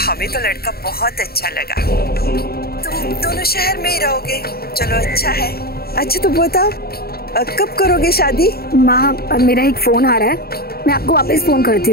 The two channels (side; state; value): right; late; 0.45 ms